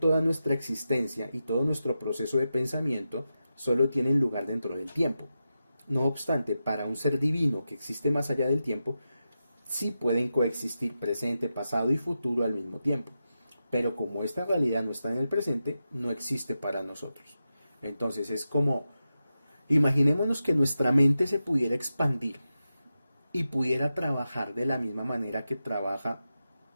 nuestra existencia y todo nuestro proceso de pensamiento solo tienen lugar dentro del tiempo. No obstante, para un ser divino que existe más allá del tiempo, sí pueden coexistir presente, pasado y futuro al mismo tiempo. Pero como esta realidad no está en el presente, no existe para nosotros. Entonces es como, imaginémonos que nuestra mente se pudiera expandir y pudiera trabajar de la misma manera que trabaja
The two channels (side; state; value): both; inverted; correlation -0.90